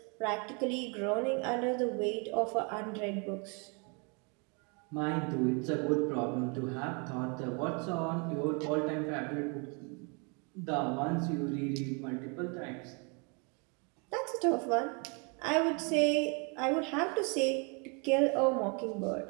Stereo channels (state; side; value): quieter; left; 34.1 dB